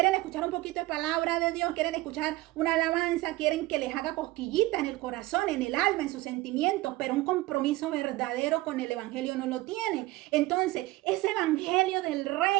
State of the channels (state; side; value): quieter; left; 19.1 dB